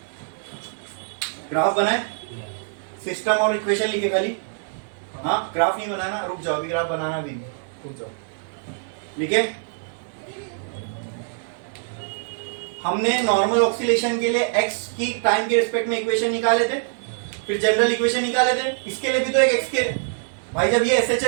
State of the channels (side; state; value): left; silent; digital silence